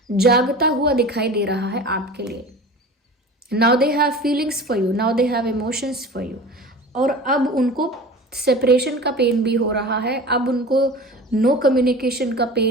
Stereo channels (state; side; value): normal; both; correlation 0.37